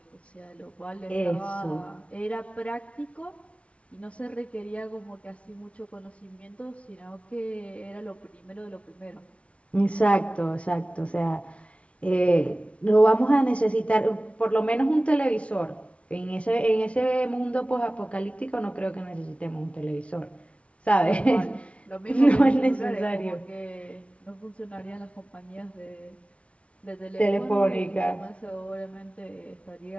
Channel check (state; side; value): late; right; 0.062 ms